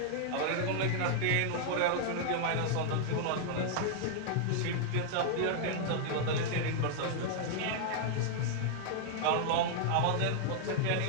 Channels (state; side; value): different; both; correlation -0.01